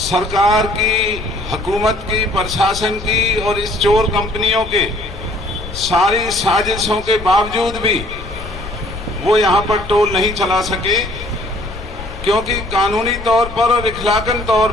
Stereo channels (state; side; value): noise; left; rumble, 12 dB below the sound